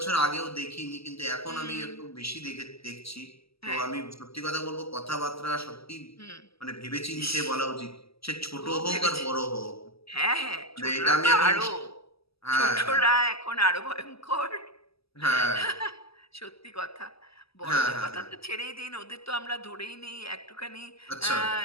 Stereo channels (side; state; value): right; late; 0.76 ms